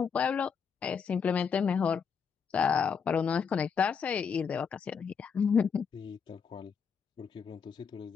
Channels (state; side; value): quieter; right; 6.4 dB